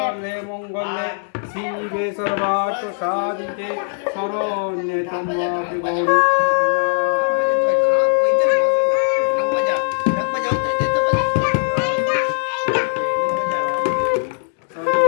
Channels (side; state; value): right; silent; digital silence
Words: মঙ্গলে শিবে সর্বার্থ সাধিতে শরণ্যে ত্র্যম্বকে গৌরী